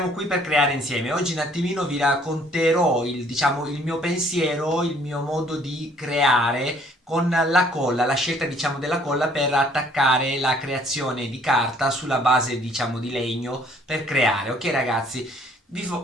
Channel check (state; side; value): normal; both; correlation 0.60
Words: qui per creare insieme, oggi un attimino vi racconterò il mio pensiero, il mio modo di creare con la colla, la scelta della colla per attaccare la creazione di carta sulla base di legno per creare. Ok ragazzi,